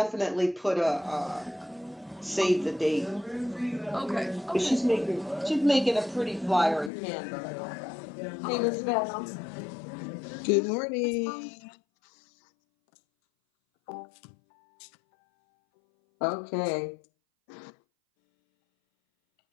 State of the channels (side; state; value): right; drops out; at 6.9 s